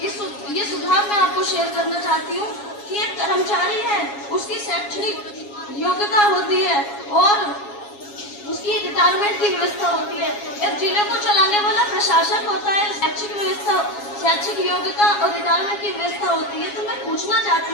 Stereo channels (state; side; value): late; right; 7.3 ms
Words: ये सुझाव मैं आपको शेयर करना चाहती हूँ कि एक कर्मचारी है, उसकी शैक्षणिक योग्यता होती है और उसकी रिटायरमेंट की व्यवस्था होती है। एक जिले को चलाने वाला प्रशासक होता है, शैक्षिक योग्यता और रिटायरमेंट की व्यवस्था होती है। तो मैं पूछना